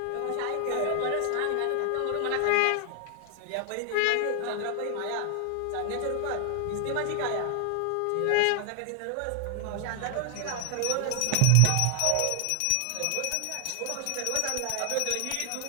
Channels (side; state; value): both; different; correlation 0.00